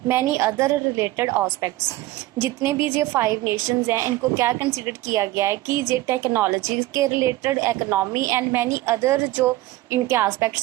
many other related aspects. जितने भी ये 5 नेशंस हैं, इनको क्या कंसिडर किया गया है कि ये टेक्नोलॉजी के related, economy and many other जो इनके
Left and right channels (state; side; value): quieter; left; 17.3 dB